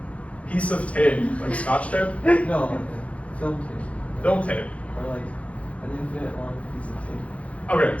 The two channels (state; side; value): late; right; 0.064 ms